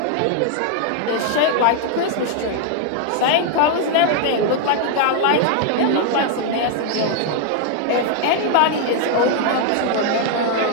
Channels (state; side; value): different; both; correlation 0.00